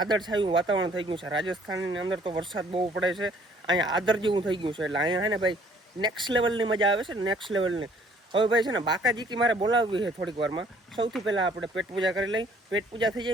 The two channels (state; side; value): normal; both; correlation 0.59